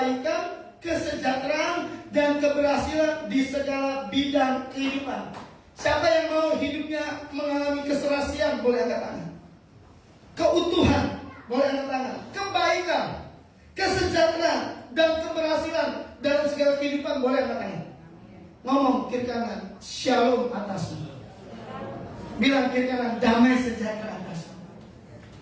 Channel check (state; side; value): identical; both; correlation 1.00